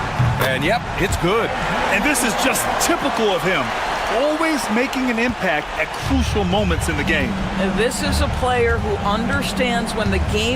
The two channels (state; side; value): identical; both; correlation 1.00